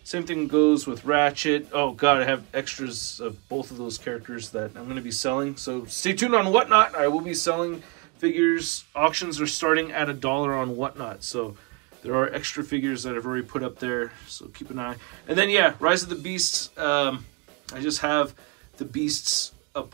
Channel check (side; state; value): left; quieter; 30.3 dB